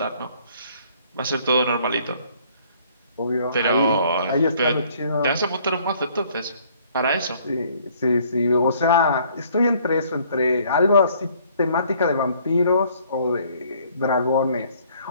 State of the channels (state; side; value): inverted; both; correlation -0.60